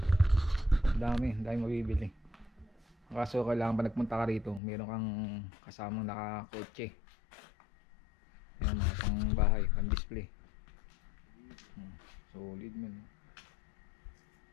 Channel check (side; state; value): right; drops out; at 4.6 s